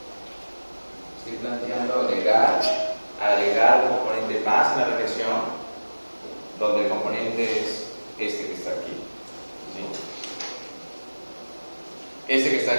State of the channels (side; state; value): both; inverted; correlation -1.00